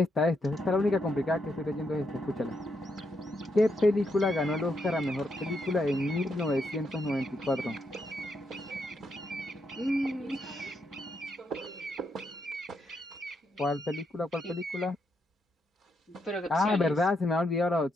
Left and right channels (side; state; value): both; normal; correlation 0.80